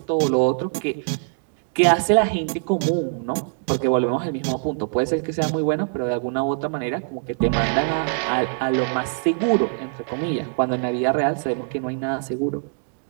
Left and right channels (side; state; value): left; silent; digital silence